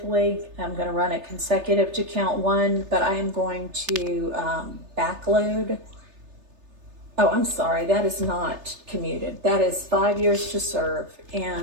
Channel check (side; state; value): left; late; 3.3 ms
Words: I'm going to run it consecutive to count one, but I am going to backload. Oh, I'm sorry, that is not commuted. That is 5 years to serve,